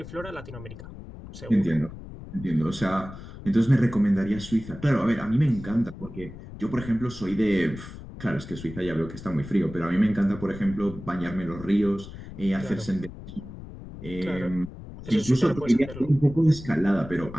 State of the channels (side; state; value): left; noise; rumble, 13 dB below the sound